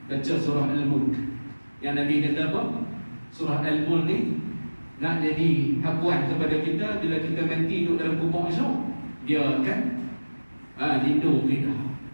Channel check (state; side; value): inverted; both; correlation -1.00